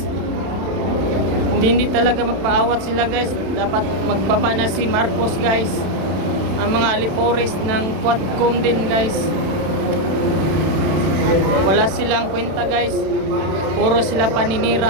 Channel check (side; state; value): left; late; 31 ms